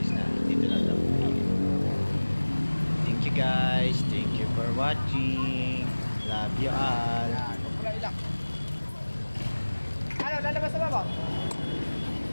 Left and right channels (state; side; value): inverted; both; correlation -1.00